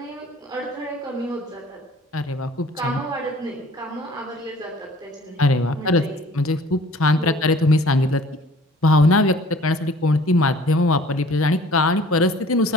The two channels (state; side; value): normal; both; correlation 0.50